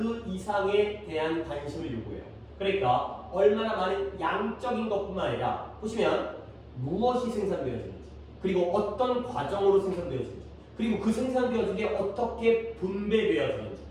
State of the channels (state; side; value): identical; both; correlation 1.00